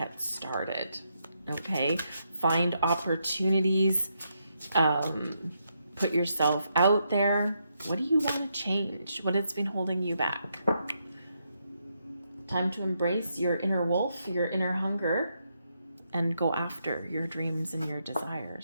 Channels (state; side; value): inverted; both; correlation -0.80